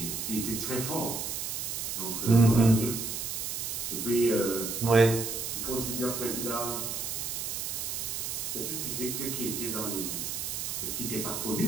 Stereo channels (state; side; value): noise; right; hiss, 3 dB below the sound